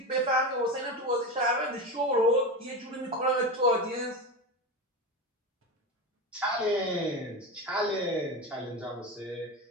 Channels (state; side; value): normal; both; correlation 0.21